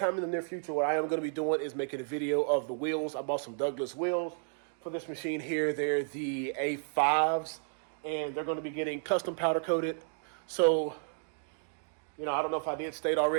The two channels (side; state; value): left; silent; digital silence